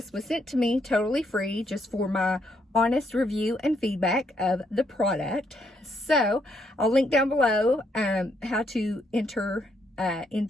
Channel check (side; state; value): both; normal; correlation 0.74